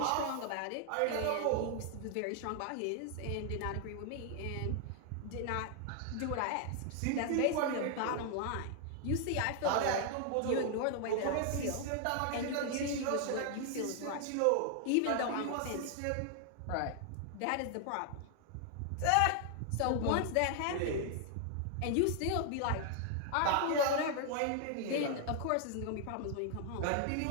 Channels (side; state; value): both; different; correlation 0.00